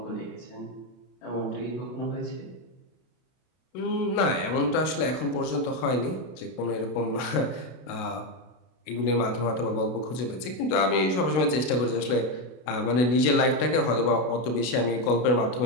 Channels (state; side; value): late; right; 32 ms